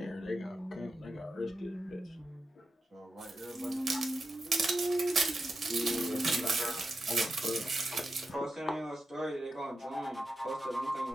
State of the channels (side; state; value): both; normal; correlation 0.90